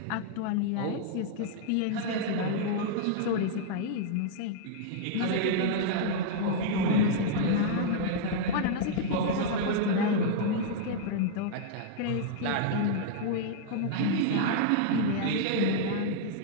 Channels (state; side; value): different; both; correlation -0.01